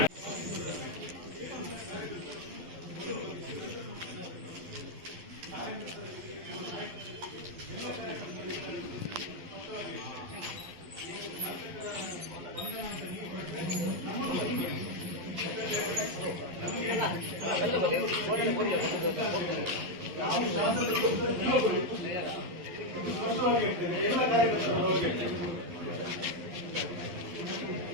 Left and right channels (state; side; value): late; left; 11 ms